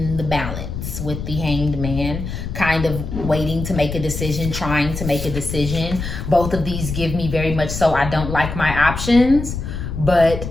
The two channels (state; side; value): noise; left; rumble, 6 dB below the sound